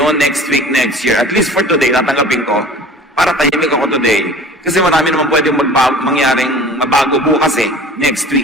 next week, next year, at least for today, tatanggapin ko para tahimik ako today. Kasi marami naman pwedeng mangyaring mabago bukas next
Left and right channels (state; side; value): normal; both; correlation 0.44